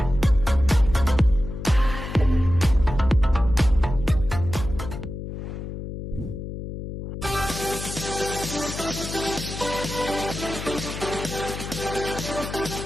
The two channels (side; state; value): left; noise; hum, 8 dB below the sound